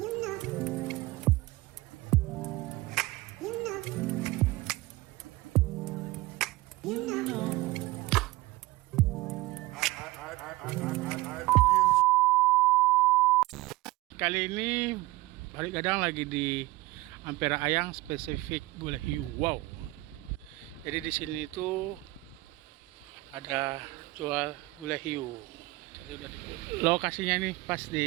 Kali ini Pari Gadang lagi di Ampera Ayang, spesifik gulai hiu. Wow. Jadi di sini itu ada jual gulai hiu. Tadi udah lokasinya nih pas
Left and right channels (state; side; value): quieter; left; 19.8 dB